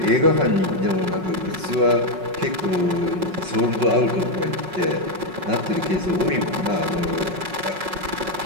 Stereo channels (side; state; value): left; late; 5.4 ms